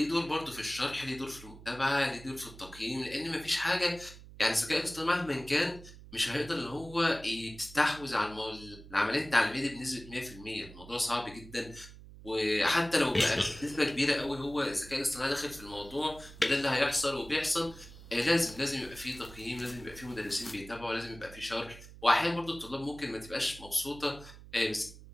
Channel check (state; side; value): noise; right; hum, 17 dB below the sound